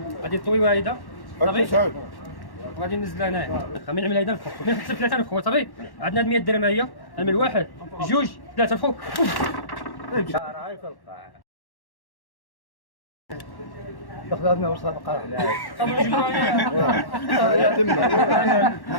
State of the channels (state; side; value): late; right; 1.1 ms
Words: غادي طوي واحده صافي غادي ننزل هنايا خمين عمل هيدا الفوق من حتى 3000 خويا صافي. عندنا 100 درهم هي نعمل واحد جوج ثلاثه الفوق. خذنا وصفقه